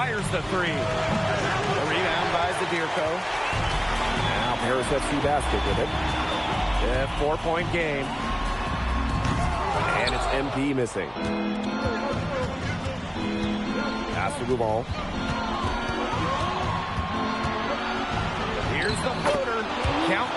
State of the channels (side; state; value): both; identical; correlation 1.00